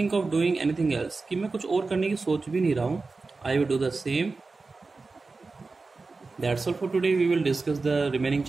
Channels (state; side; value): quieter; left; 3.9 dB